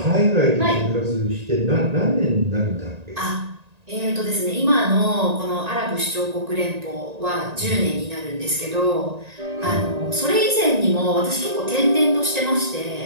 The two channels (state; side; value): late; left; 1.9 ms